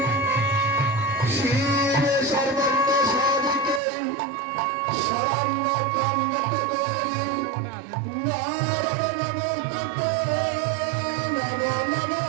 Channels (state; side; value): drops out; left; at 3.8 s